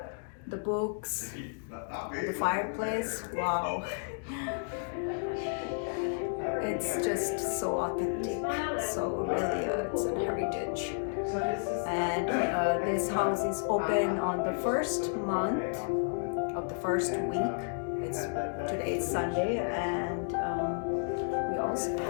the books, and the fireplace. Wow. It's just so authentic, so really it's a heritage. And this house is open on the first month of the first week. Today is Sunday, and we also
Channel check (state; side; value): silent; right; digital silence